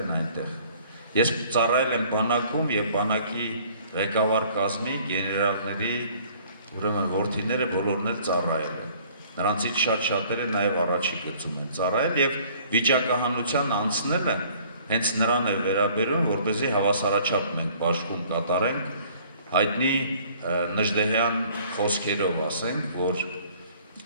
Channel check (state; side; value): inverted; both; correlation -0.56